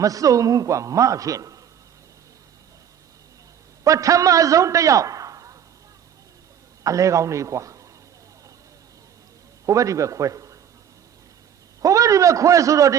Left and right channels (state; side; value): quieter; left; 8.9 dB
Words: မစုံဘူးကွာမဖြစ်ပထမဆုံးတယောက်အလဲကောင်းနေကွာဟိုဘက်ဒီဘက်ခွဲဟိုဘက်ဒီဘက်ခွဲဆိုတော့တ